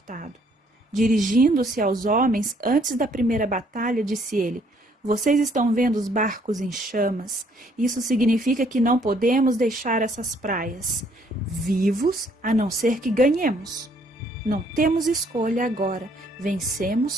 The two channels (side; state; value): both; normal; correlation 0.65